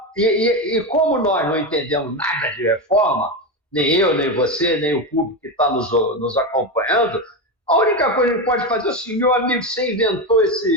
E como nós não entendemos nada de reforma, nem eu, nem você, nem o público que está nos acompanhando, A única coisa que a gente pode fazer é assim, meu amigo, você inventou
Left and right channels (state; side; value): normal; both; correlation 0.14